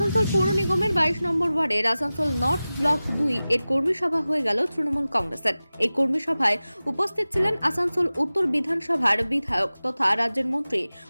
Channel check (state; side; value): inverted; both; correlation -0.97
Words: পৌর নিগমের 22 নম্বর ওয়ার্ডের আসানসোল নর্থ ব্লক 2 এর কর্মী সভা হয়ে গেল তৃণমূল কংগ্রেসের। এই কর্মী সভায় উপস্থিত ছিলেন আসানসোল উত্তর বিধানসভার বিধায়ক তথা রাজ্যের মন্ত্রী